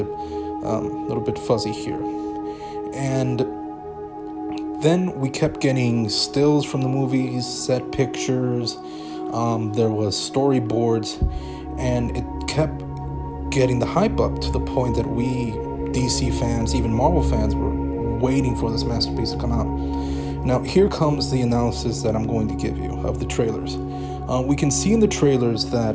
fuzzy here. And then we kept getting stills from the movies, set pictures, there was storyboards, and it kept getting the hype up to the point that we, DC fans, even Marvel fans, were waiting for this masterpiece to come out. Now, here comes the analysis that I'm going to give you of the trailers. We can see in the trailers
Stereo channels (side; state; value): both; identical; correlation 1.00